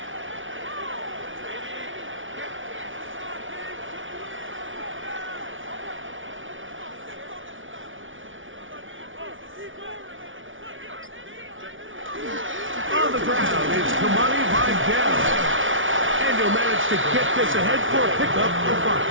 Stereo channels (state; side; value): late; left; 0.57 ms